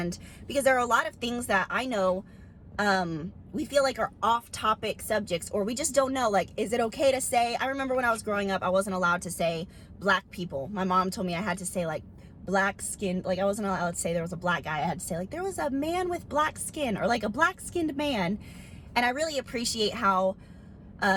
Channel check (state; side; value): identical; both; correlation 1.00